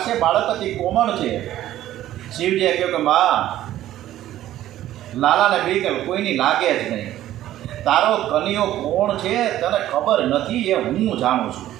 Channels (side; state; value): left; quieter; 13.4 dB